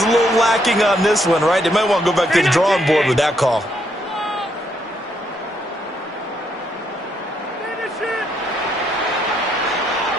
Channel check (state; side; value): normal; both; correlation 0.75